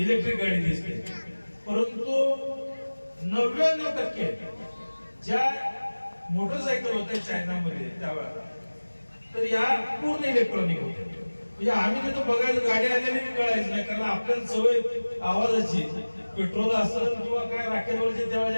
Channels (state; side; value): inverted; both; correlation -1.00